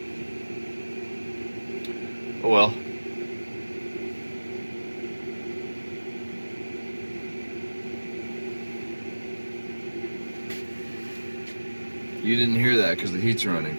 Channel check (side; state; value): both; inverted; correlation -1.00